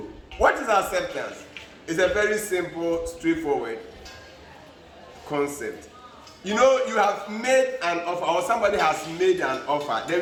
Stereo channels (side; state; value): both; identical; correlation 1.00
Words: What is acceptance? It's a very simple, straightforward concept. You know, you have made an offer, or somebody has made an offer.